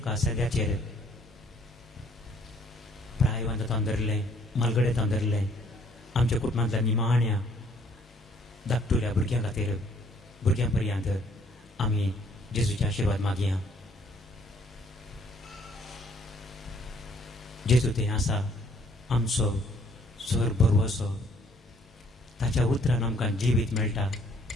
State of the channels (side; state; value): both; normal; correlation 0.63